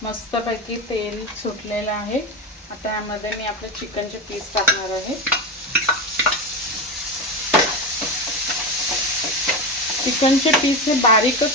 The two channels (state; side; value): normal; both; correlation 0.18